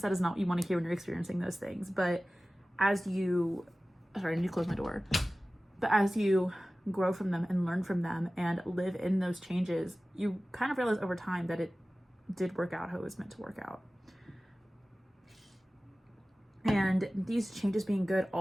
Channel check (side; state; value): both; normal; correlation 0.97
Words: That is not what you want to hear when you're experiencing those things. But as you, sorry, I need to close my door. But as you grow from them and learn from them and live in those changes, you kind of realize over time that it did work out how it was meant to work out. And these changes being good